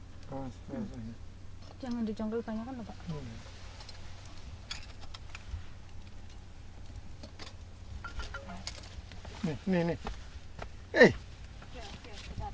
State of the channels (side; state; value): both; identical; correlation 1.00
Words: Jangan dijongkel banyak kan Pak. Nih.